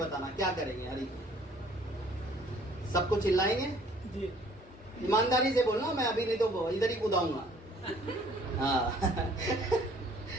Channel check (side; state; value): both; normal; correlation 0.57